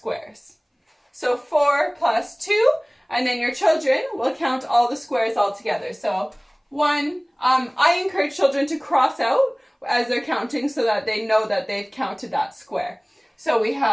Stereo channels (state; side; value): identical; both; correlation 1.00